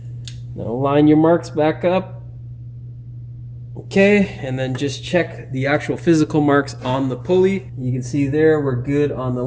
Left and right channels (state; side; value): identical; both; correlation 1.00